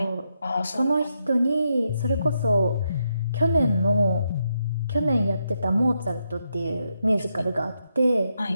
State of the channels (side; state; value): both; inverted; correlation -0.81